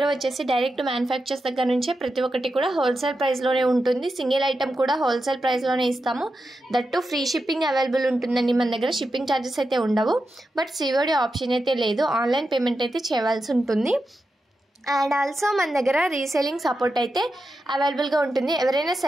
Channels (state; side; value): normal; both; correlation 0.89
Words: వచ్చేసి డైరెక్ట్ మ్యానుఫ్యాక్చర్స్ దగ్గర నుంచే ప్రతి ఒక్కటి కూడా హోల్సేల్ ప్రైస్లోనే ఉంటుంది. సింగిల్ ఐటమ్ కూడా హోల్సేల్ ప్రైస్లోనే ఇస్తాము. దట్టు ఫ్రీ షిప్పింగ్ అవైలబుల్ ఉంటుందండి. మన దగ్గర షిప్పింగ్ ఛార్జెస్ అయితే ఉండవు. బట్ సిఓడి ఆప్షన్ అయితే లేదు. ఆన్లైన్ పేమెంట్ అయితే చేయవలసి ఉంటుంది. అండ్ ఆల్సో మన దగ్గర రీసేలింగ్ సపోర్ట్ అయితే అవైలబుల్గా ఉంటుంది. ఎవరైనా